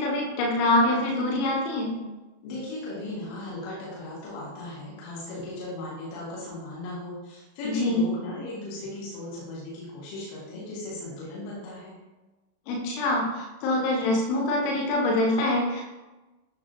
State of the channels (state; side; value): late; right; 36 ms